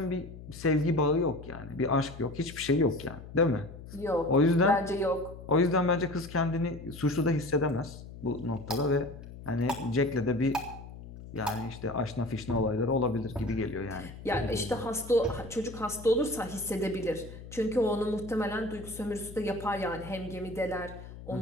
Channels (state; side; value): noise; left; hum, 14 dB below the sound